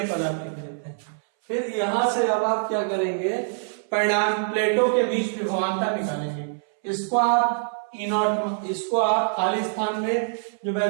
पद आप लिख देते हैं। फिर यहां से अब आप क्या करेंगे, परिणाम प्लेटों के बीच विभवांतर निकालेंगे। इसको आप E0, इसको आप खाली स्थान में जो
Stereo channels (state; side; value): silent; left; 62 dB below the other